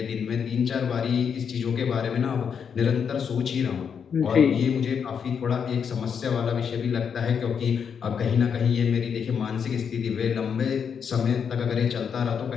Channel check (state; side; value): quieter; right; 7.0 dB